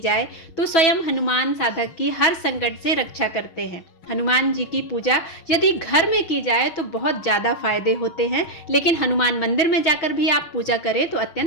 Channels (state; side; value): late; right; 6.1 ms